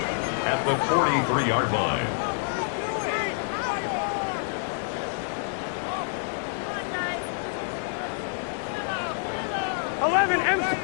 at the 43-yard line.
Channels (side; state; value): right; silent; digital silence